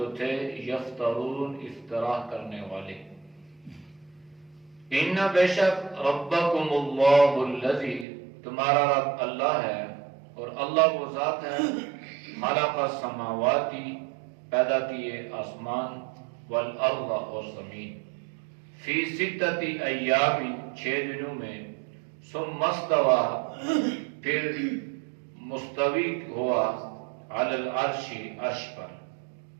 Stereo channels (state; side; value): drops out; left; at 8.1 s